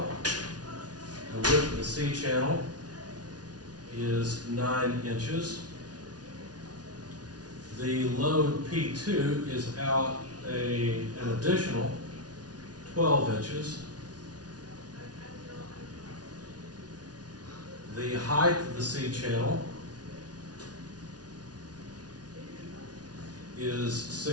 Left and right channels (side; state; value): left; late; 0.69 ms